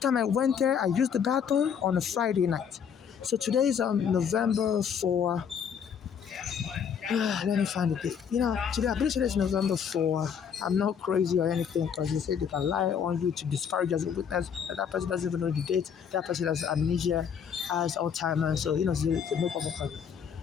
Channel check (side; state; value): right; quieter; 7.5 dB